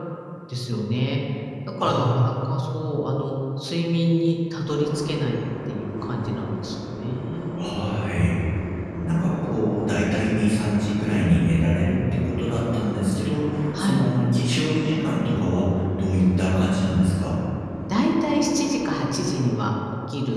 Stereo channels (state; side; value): identical; both; correlation 1.00